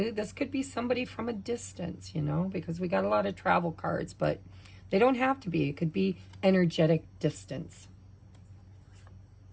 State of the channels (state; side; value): identical; both; correlation 1.00